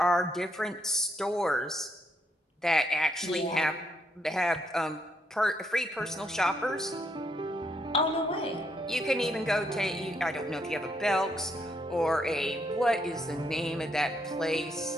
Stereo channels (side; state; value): both; normal; correlation 0.75